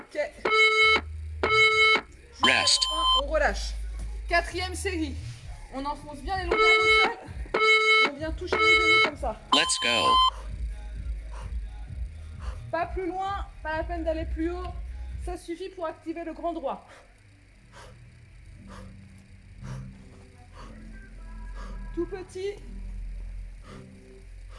Rest. On relâche. Quatrième série. On enfonce bien les lombaires au sol. Et on vient toucher les genoux comme ça. Let's go. Pas plus loin, pas la peine d'aller plus haut. Ça suffit pour activer le grand droit. Tout petit.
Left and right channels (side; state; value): both; identical; correlation 1.00